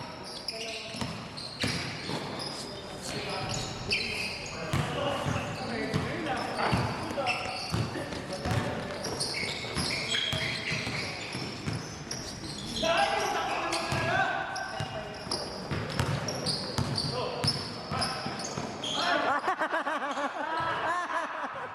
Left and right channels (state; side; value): identical; both; correlation 1.00